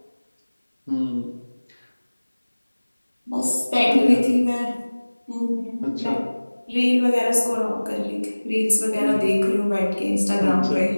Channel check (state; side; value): inverted; both; correlation -1.00